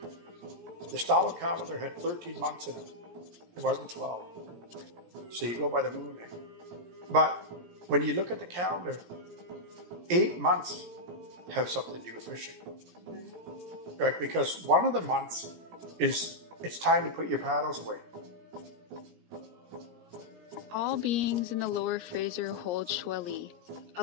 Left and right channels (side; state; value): left; late; 17 ms